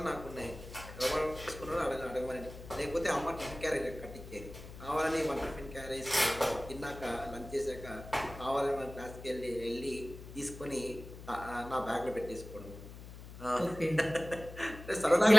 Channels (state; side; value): noise; left; hum, 14 dB below the sound